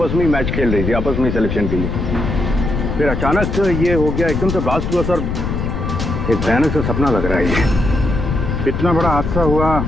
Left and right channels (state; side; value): noise; left; rumble, 2 dB below the sound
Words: में ही मैच खेल रही थी, आपस में सिलेक्शन के लिए। फिर अचानक ये हो गया, एकदम से ब्लास्ट हुआ सर। एक भयानक सा सपना लग रहा है ये। इतना बड़ा हादसा हुआ,